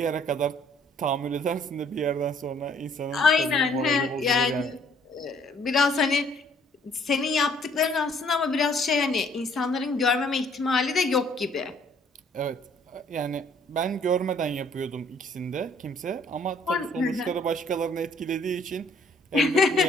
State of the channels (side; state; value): both; normal; correlation 0.61